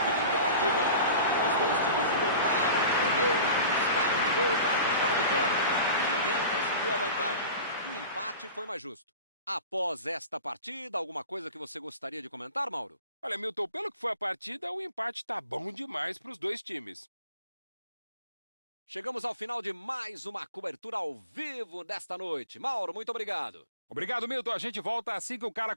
Fim de partida. Os dois times lutaram, correram, buscaram no gol para tentar a vitória. Ninguém conseguiu a vantagem. E o empate foi mais justo. Após esta partida, alguma coisa que você gostaria de comentar, Mauro? Olha, Milton, pelo que foi a partida, o empate tá bom demais para os dois times. Chegamos ao final de mais uma cobertura ao vivo desta noite. Mauro, muito obrigado. Obrigado, Milton. A gente volta assim que o cara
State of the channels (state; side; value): inverted; both; correlation -0.39